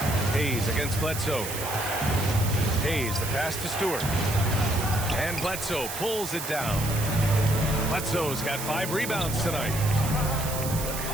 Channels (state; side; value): noise; right; hiss, 7 dB below the sound